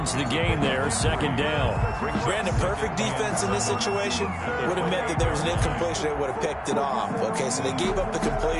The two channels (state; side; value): identical; both; correlation 1.00